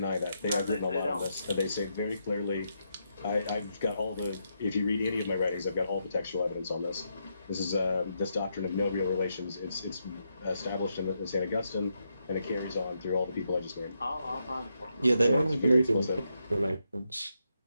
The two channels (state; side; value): inverted; both; correlation -0.81